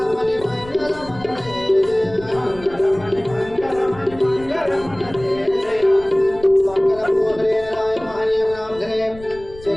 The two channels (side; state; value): left; noise; rumble, 19 dB below the sound